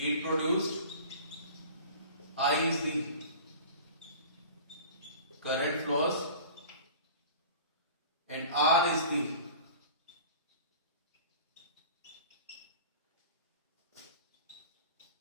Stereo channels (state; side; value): inverted; both; correlation -0.41